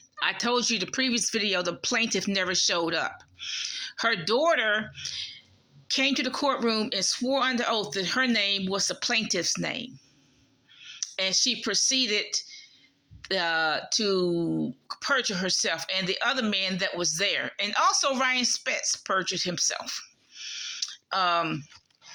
I told you the previous video, the plaintiff never showed up. Her daughter came to the courtroom and swore under oath that her name was the plaintiff's name. And she proceeded to perjure herself and the other man that was there. And also Ryan Spetz perjured himself.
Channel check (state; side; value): identical; both; correlation 1.00